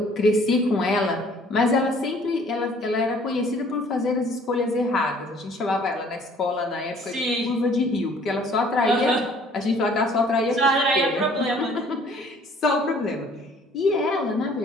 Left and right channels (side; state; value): both; normal; correlation 0.56